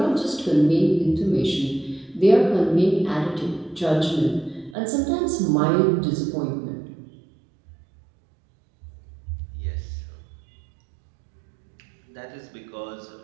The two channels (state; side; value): drops out; left; at 4.8 s